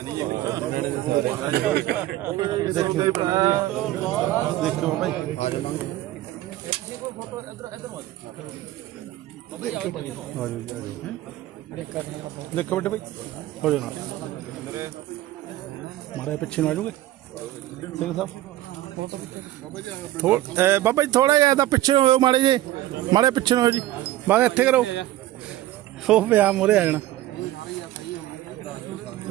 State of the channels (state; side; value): quieter; left; 15.1 dB